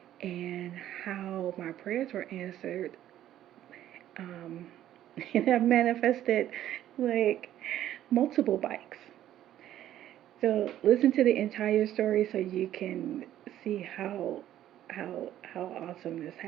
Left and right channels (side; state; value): left; quieter; 12.2 dB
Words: and how my prayers were answered. Um, and I manifested like multiple bikes. So listen to the entire story so you can see how awesome this